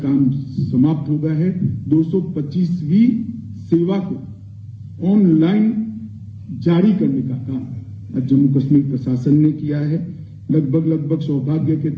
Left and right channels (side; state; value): both; identical; correlation 1.00